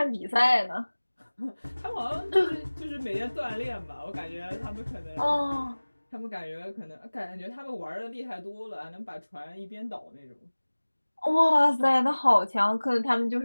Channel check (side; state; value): both; inverted; correlation -1.00